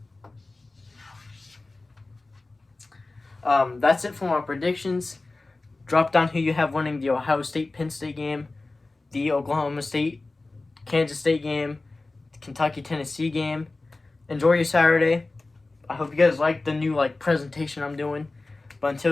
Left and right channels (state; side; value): quieter; right; 3.3 dB